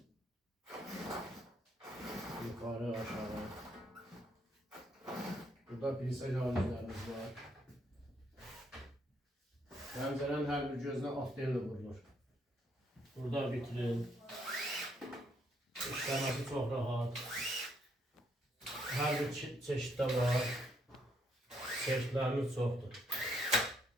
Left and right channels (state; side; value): normal; both; correlation 0.72